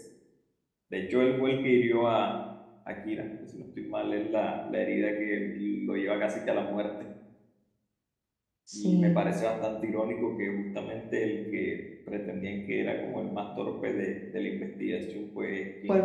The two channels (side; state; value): both; identical; correlation 1.00